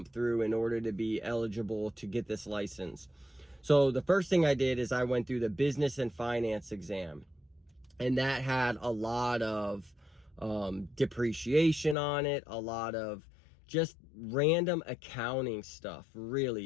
through in order to be eligible to get this license. So the first thing I did is I went through the business and finance exam. And that had a lot of depreciation on it, a lot of just random accounting stuff, really.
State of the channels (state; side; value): drops out; right; at 12.0 s